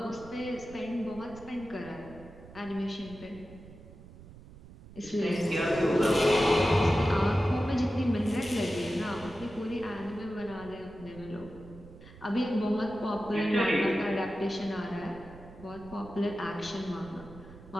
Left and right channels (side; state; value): right; noise; rumble, 18 dB below the sound